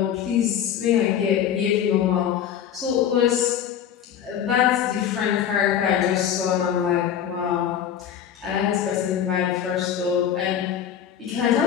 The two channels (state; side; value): quieter; right; 9.3 dB